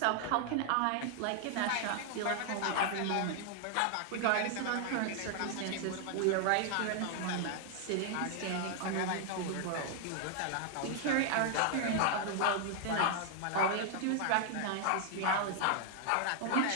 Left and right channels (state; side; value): different; both; correlation 0.00